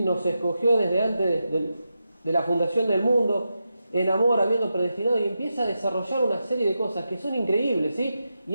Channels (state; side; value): inverted; both; correlation -0.88